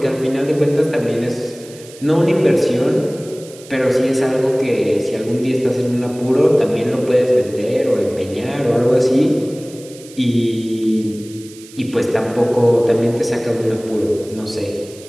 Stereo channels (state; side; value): noise; right; hiss, 20 dB below the sound